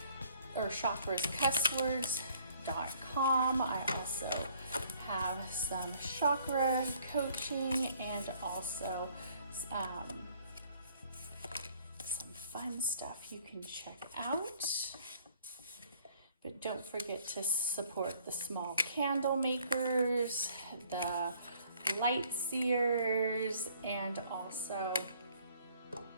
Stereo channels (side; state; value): both; inverted; correlation -0.60